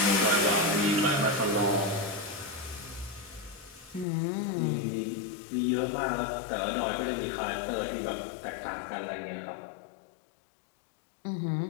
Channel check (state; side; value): drops out; right; at 4.0 s